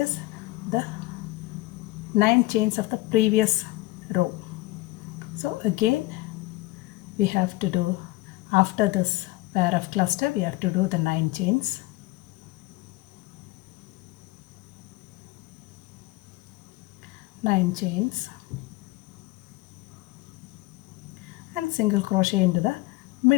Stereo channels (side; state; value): right; quieter; 20.3 dB